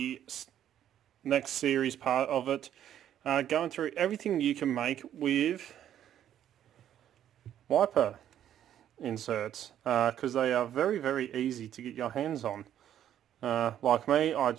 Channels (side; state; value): left; quieter; 10.7 dB